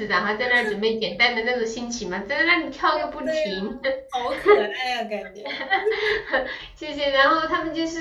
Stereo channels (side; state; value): both; identical; correlation 1.00